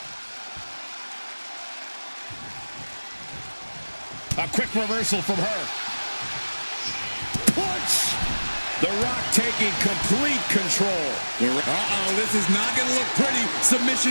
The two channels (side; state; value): both; inverted; correlation -1.00